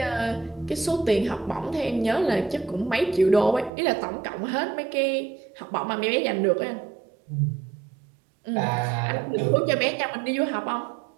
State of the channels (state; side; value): drops out; left; at 3.7 s